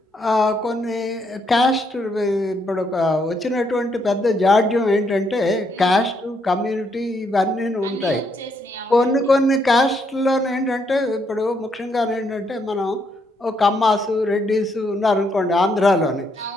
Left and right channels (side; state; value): both; normal; correlation 0.75